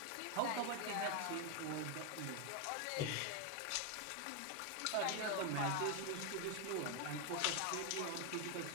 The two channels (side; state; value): both; different; correlation 0.01